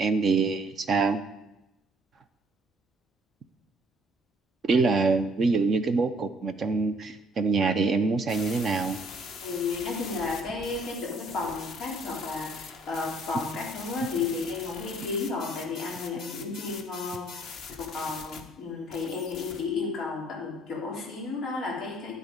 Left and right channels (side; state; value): both; normal; correlation 0.62